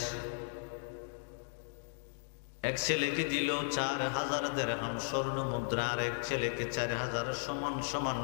এক ছেলেকে দিল ৪,০০০ দিরহাম স্বর্ণ মুদ্রা, আর এক ছেলেকে ৪,০০০ সমান সমান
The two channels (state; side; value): silent; right; digital silence